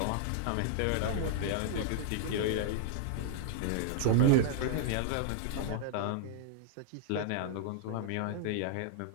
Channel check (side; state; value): both; different; correlation -0.01